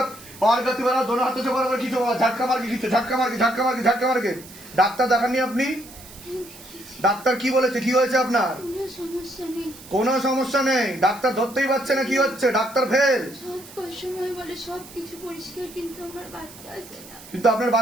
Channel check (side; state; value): right; noise; hiss, 18 dB below the sound